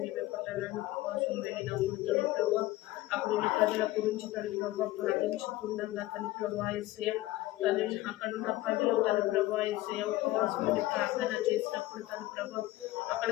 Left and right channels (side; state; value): right; quieter; 17.2 dB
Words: పట్టణానికి కోసం వెళ్ళినప్పుడు తల్లి ప్రభా అప్పుడు ప్రజల గురించి తల్లి ప్రభా ప్రార్థించుకుండగా తల్లి ప్రభా ఏసయ్య తల్లి అక్కడున్న ప్రజలు తల్లి ప్రభా ఏసయ్య ఉపవాసం అని ప్రార్థన చేసినప్పుడు తల్లి ప్రభా అక్కడ